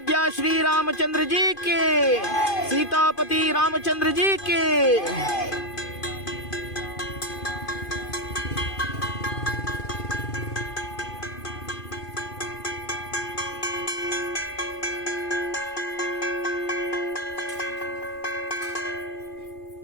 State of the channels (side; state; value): right; late; 2.5 ms